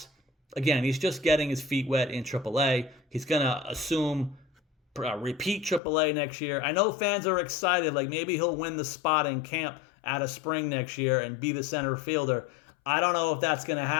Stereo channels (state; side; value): drops out; right; at 5.8 s